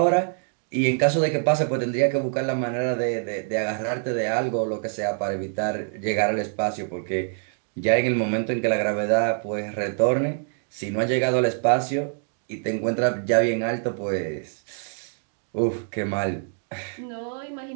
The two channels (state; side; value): silent; left; 62 dB below the other